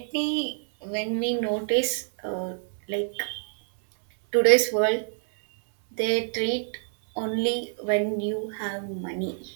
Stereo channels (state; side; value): silent; left; 60 dB below the other